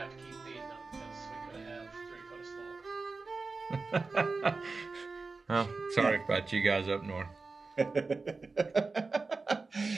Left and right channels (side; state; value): left; quieter; 4.0 dB